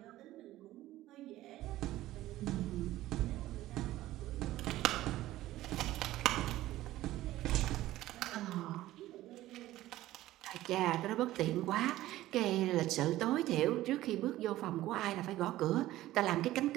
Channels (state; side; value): quieter; left; 15.5 dB